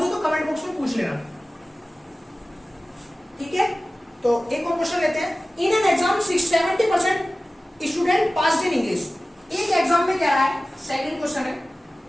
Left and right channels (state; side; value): normal; both; correlation 0.96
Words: हो तो कमेंट बॉक्स में पूछ लेना, ठीक है। तो एक और क्वेश्चन लेते हैं। In an exam 70% student pass in English. एक एग्जाम में क्या रहा है, सेकंड क्वेश्चन है,